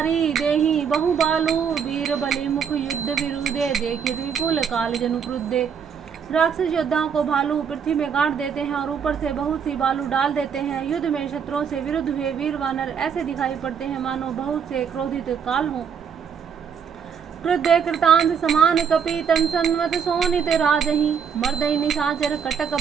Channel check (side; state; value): left; quieter; 7.1 dB